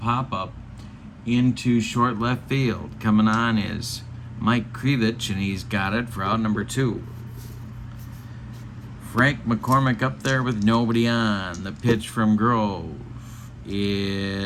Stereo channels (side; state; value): both; identical; correlation 1.00